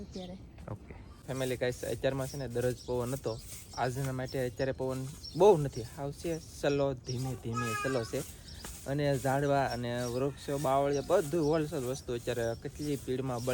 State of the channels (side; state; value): both; identical; correlation 1.00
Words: અત્યારે. ઓકે ફેમિલી ગાઈસ, અત્યારમાં છે ને દરરોજ પવન હતો. આજના માટે અત્યારે પવન બહુ નથી, આવશે સલો ધીમે સલો છે. અને ઝાડવા અને વૃક્ષો બાવળિયા બધું હોલસેલ વસ્તુ અત્યારે કેટલી સ્પીડમાં